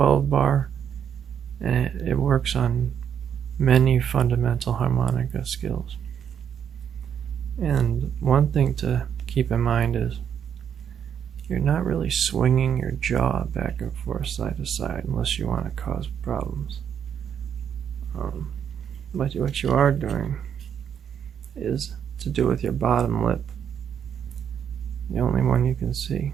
bar, and it works on many fundamental harmonica skills. And one thing to keep in mind is you're not really swinging your jaw back and forth side to side unless you want to cause problems. But what you are doing is to do with your bottom lip, the only one you can see,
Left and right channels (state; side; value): quieter; left; 8.3 dB